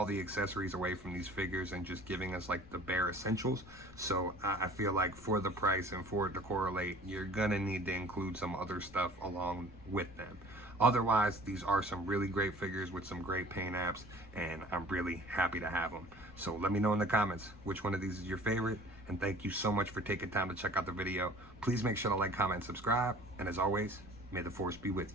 the accessories away from these figures and just giving us like the bare essentials. So I feel like for the price and for it to correlate, you're gonna need to include some other stuff along with them. Otherwise, these are some really great figures with some great paint apps, and I'm really happy to have them. So let me know in the comments which one of these is your favorite, and thank you so much for taking time to check out the video. Please make sure to like, comment, and subscribe, and as always, may the Force be with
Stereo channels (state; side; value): noise; left; rumble, 21 dB below the sound